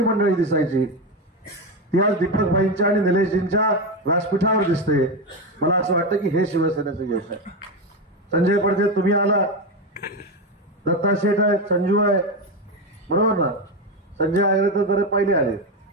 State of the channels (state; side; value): normal; both; correlation 0.14